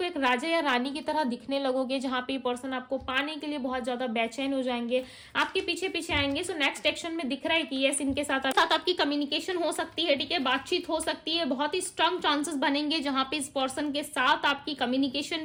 एक राजा या रानी की तरह दिखने लगोगे, जहां पे पर्सन आपको पाने के लिए बहुत ज्यादा बेचैन हो जाएंगे, आपके पीछे पीछे आएंगे। सो नेक्स्ट एक्शन में दिख रहा है कि यस, इनके साथ आपकी कम्युनिकेशन हो सकती है, ठीक है, बातचीत हो सकती है, बहुत ही स्ट्रांग चांसेस बनेंगे जहां पे इस पर्सन के साथ आपकी कम्युनिकेशन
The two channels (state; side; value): identical; both; correlation 1.00